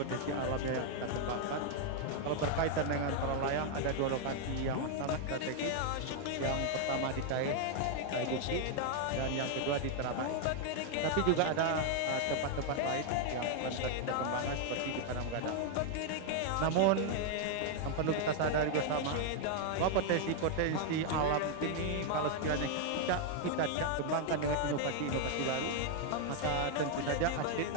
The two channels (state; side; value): different; both; correlation 0.00